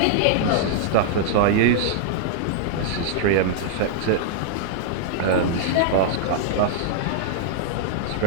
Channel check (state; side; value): different; both; correlation -0.01